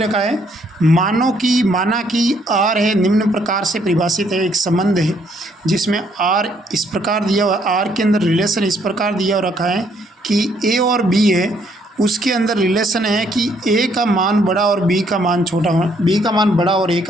है माना कि आर है निम्न प्रकार से परिभाषित है। एक संबंध है जिसमें आर इस प्रकार दिया हुआ, आर के अंदर रिलेशन इस प्रकार दिया हुआ रखा है कि ए और बी है, उसके अंदर रिलेशन है कि ए का मान बड़ा और बी का मान छोटा हो, बी का मान बड़ा और ए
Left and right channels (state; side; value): normal; both; correlation 0.68